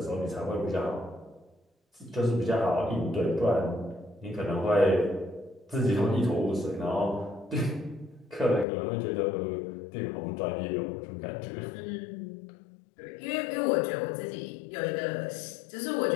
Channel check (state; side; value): drops out; right; at 8.7 s